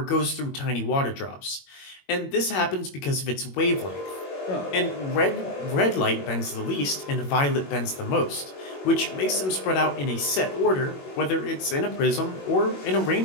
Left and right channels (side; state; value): right; late; 21 ms